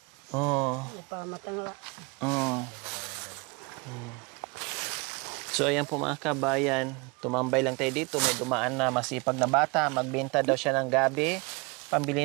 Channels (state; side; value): quieter; left; 28.3 dB